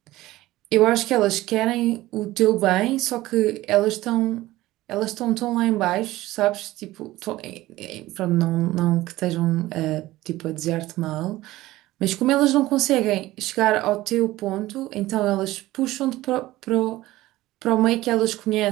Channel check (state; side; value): quieter; left; 17.2 dB